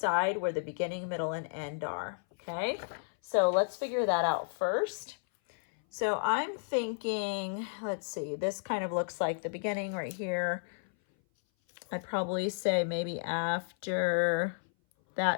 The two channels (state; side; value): silent; right; 56 dB below the other